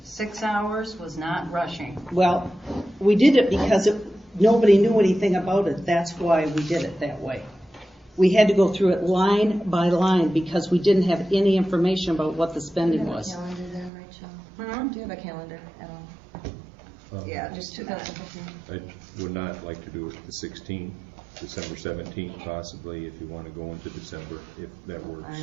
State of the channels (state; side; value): drops out; left; at 13.9 s